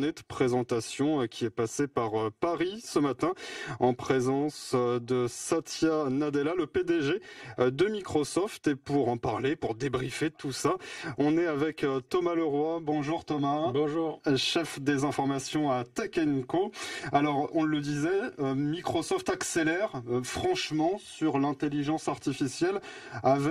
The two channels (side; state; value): both; identical; correlation 1.00